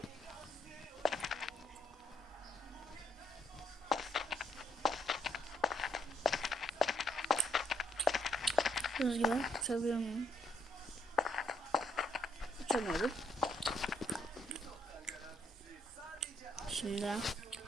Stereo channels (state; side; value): normal; both; correlation 0.70